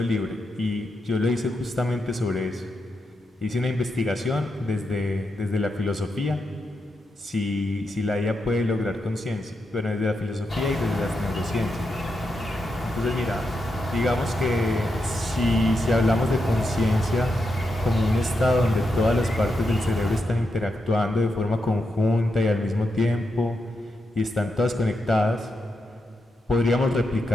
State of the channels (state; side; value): normal; both; correlation 0.85